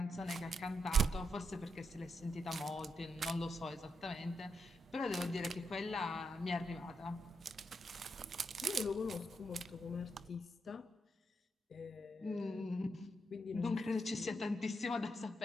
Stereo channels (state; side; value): normal; both; correlation 0.82